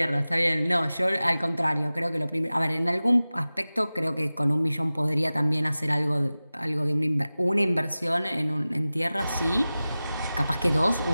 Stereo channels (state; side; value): inverted; both; correlation -0.97